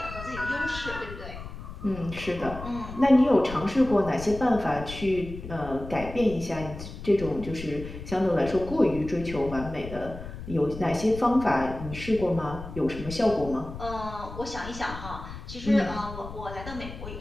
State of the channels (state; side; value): noise; left; rumble, 11 dB below the sound